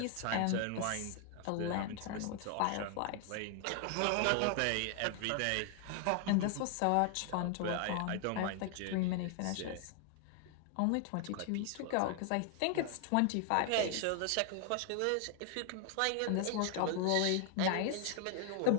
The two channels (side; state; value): both; different; correlation 0.00